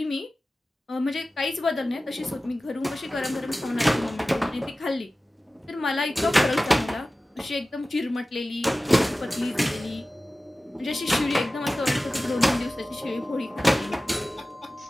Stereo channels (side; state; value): both; normal; correlation 0.96